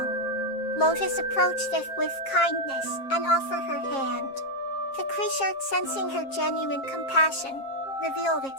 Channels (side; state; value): right; late; 7.4 ms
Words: Lotus approached it with kindness and offered her hand. The creature, sensing her genuine compassion, revealed